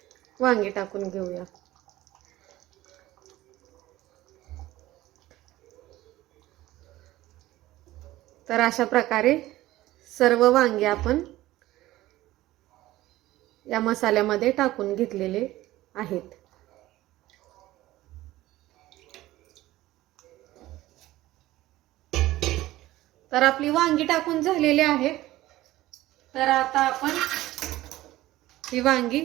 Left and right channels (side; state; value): left; quieter; 16.3 dB